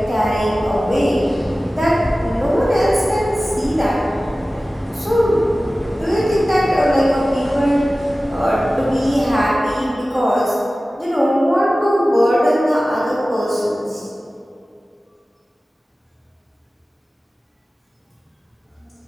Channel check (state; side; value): normal; both; correlation 0.96